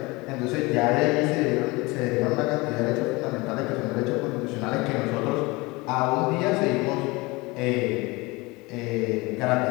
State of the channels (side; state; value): right; quieter; 23.9 dB